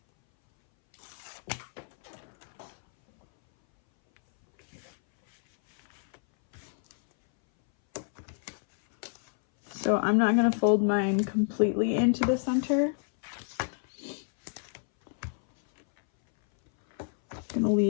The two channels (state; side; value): silent; right; 59 dB below the other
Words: So I'm not going to fold mine completely into the center. I'm going to